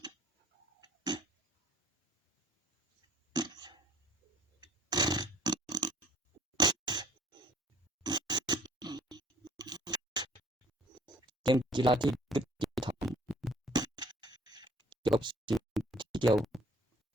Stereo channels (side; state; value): both; normal; correlation 0.56